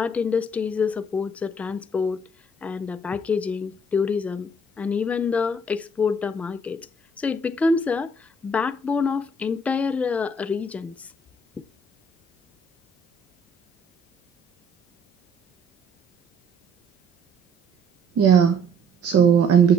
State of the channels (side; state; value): both; normal; correlation 0.61